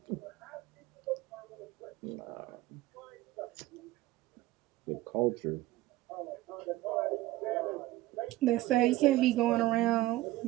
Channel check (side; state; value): left; quieter; 16.8 dB